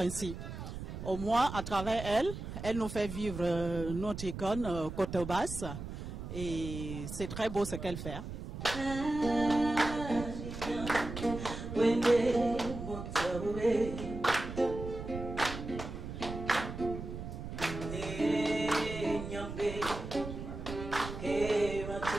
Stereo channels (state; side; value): noise; right; rumble, 8 dB below the sound